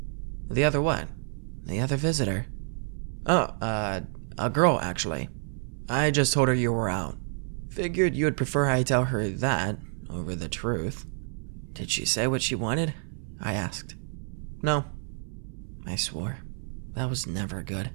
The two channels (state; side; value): silent; left; 59 dB below the other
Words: "The other what?" "The other visitor." "Oh, a girl, actually. I just told her you were out. Figured you would prefer I tell her that over the truth." "Did she say what she wanted?" I asked. "No." I swore. That was never good.